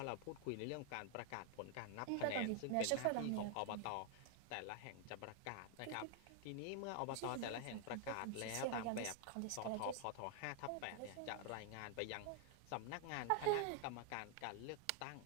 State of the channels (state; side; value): different; both; correlation 0.00